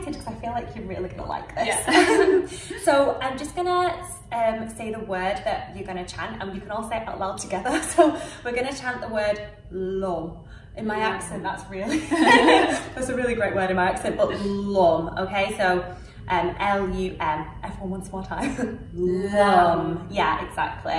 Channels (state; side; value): identical; both; correlation 1.00